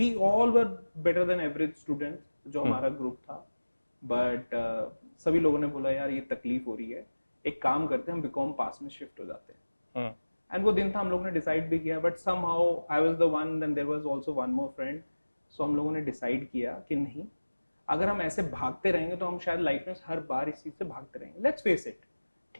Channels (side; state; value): both; inverted; correlation -1.00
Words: all were better than average students जो हमारा ग्रुप था, बट सभी लोगों ने बोला यार ये तकलीफ हो रही है, एक काम करते हैं हम बीकॉम पास में शिफ्ट हो जाते हैं। एंड वो दिन था, हम लोगों ने डिसाइड भी किया, but somehow I was the one, then there was also one more friend. So हम लोगों ने डिसाइड किया कि नहीं, अगर हम ऐसे भागते रहेंगे तो हम शायद लाइफ में हर बार इस चीज़ से भागते रहेंगे। लेट्स फेस इट,